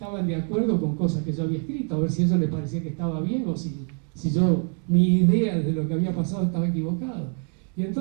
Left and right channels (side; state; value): left; quieter; 37.6 dB